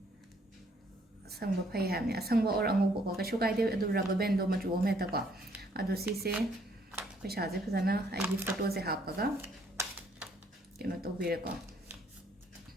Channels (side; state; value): both; normal; correlation 0.66